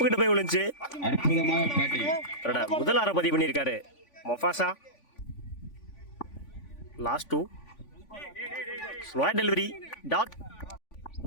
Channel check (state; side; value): late; right; 3.5 ms